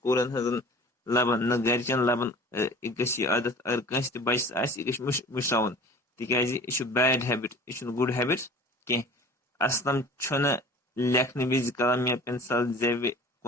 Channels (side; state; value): both; normal; correlation 0.44